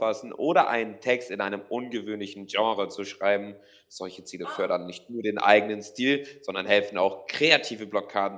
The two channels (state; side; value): identical; both; correlation 1.00